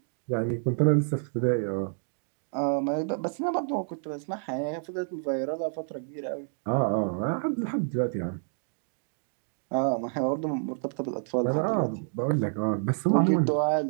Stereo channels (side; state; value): left; silent; digital silence